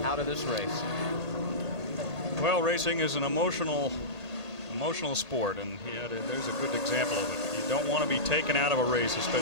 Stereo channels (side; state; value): right; late; 1.5 ms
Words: out of this race. Well, racing is an emotional sport, and there's a good example of it. You don't want to be taken out of a race,